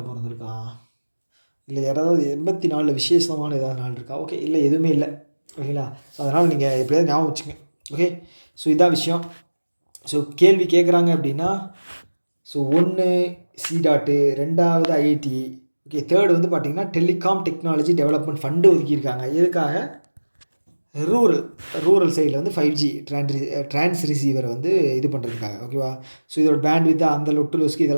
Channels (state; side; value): inverted; both; correlation -1.00